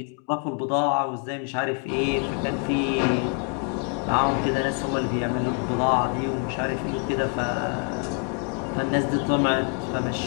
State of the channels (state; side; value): quieter; right; 37.5 dB